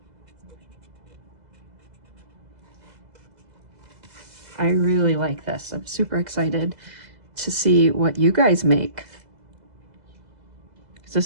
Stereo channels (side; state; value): left; late; 2.0 ms